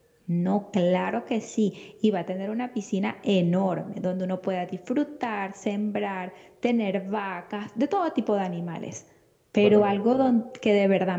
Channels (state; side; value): identical; both; correlation 1.00